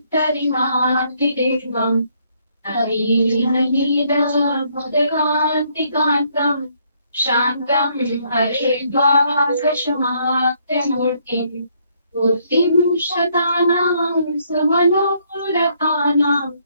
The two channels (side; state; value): both; inverted; correlation -0.69